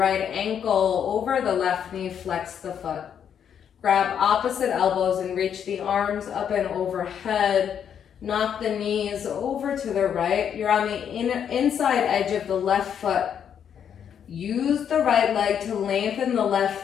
ankle over the left knee, flex the foot. Grab opposite elbows and reach the arms up and overhead. Knock the knees over to the right. You're on the inside edge of the left foot. Use the right leg to lengthen the left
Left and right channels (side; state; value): right; quieter; 8.4 dB